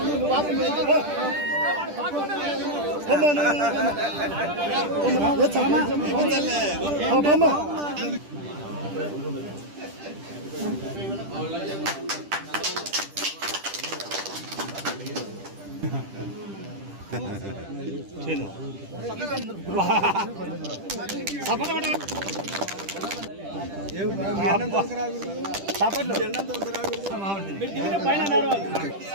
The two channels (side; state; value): left; late; 10 ms